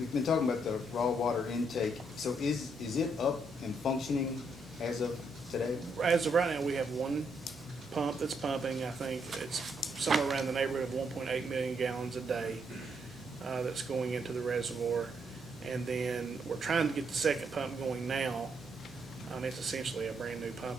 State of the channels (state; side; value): normal; both; correlation 0.76